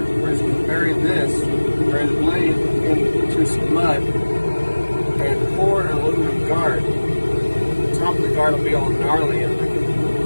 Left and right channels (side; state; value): both; inverted; correlation -1.00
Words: just going to bury the blade into some mud and pour an aluminum guard. The top of the guard will be all gnarly and we can